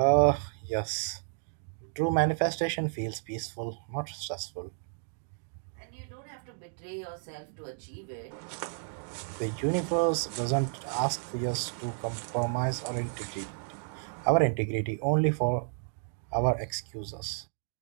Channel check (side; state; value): left; silent; digital silence